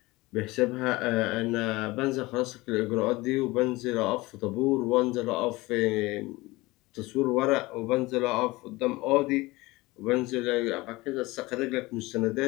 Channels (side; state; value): right; quieter; 21.2 dB